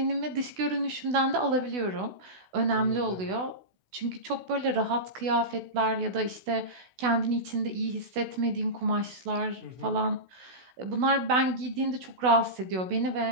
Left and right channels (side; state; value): left; late; 16 ms